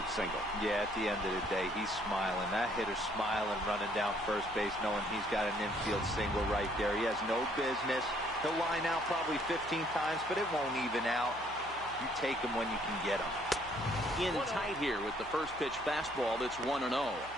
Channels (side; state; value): right; noise; hum, 19 dB below the sound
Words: single. Yeah, at the end of the day, he's smiling. That hitter's smiling, running down first base, knowing he's got an infield single right there. He has no business. He'll line out probably 15 times, but it won't even out. You take him when you can get him. In tight here with the first pitch fastball. That's 1-0.